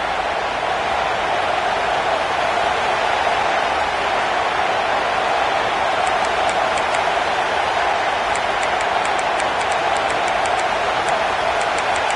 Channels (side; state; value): both; identical; correlation 1.00